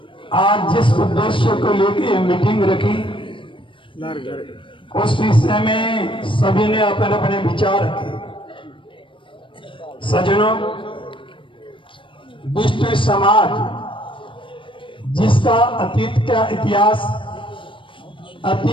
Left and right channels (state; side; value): late; right; 0.25 ms